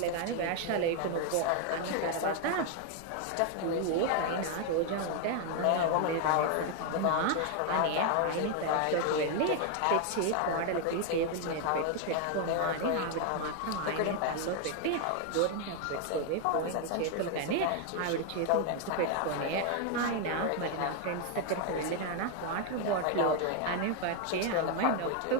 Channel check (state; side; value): different; both; correlation 0.00